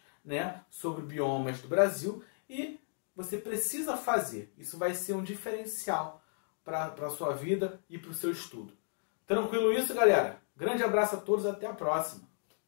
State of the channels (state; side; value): silent; right; digital silence